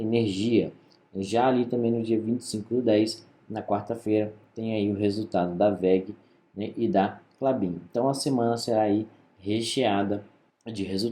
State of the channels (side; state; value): both; identical; correlation 1.00